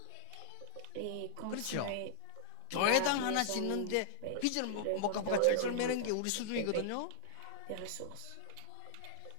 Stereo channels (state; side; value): different; both; correlation -0.01